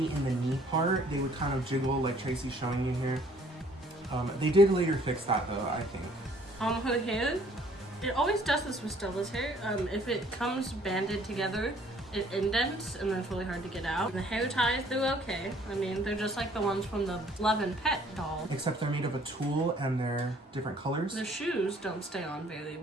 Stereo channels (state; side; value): normal; both; correlation 0.59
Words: in the knee part. They would kind of jiggle like Tracy's showing you here. They did later fix that though, I think. Her hair, it always does this with Stella's hair. If it comes banded together, it indents and then it's really hard to get out. The hair ties do okay. I mean, they're just like the ones from the Love and Pet doll. Except they're made of a tulle and they're different colors. The shoes don't stay on very